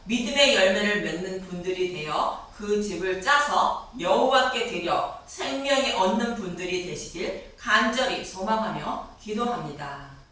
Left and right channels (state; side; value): identical; both; correlation 1.00